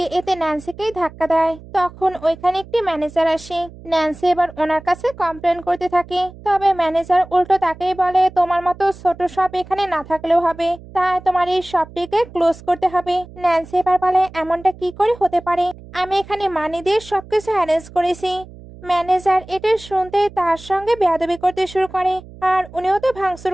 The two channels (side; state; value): right; noise; hum, 19 dB below the sound